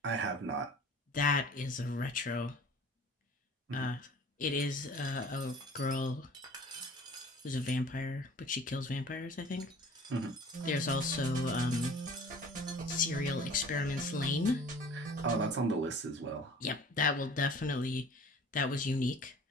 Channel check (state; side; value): normal; both; correlation 0.46